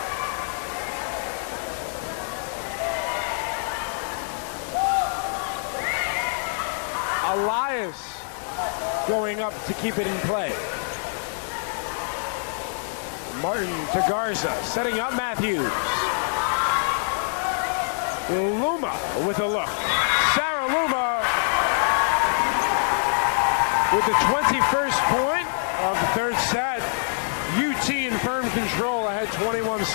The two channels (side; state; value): right; silent; digital silence